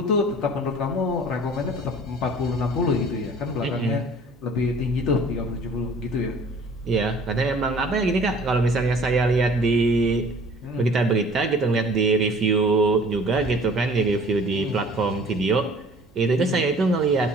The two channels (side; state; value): right; noise; hum, 29 dB below the sound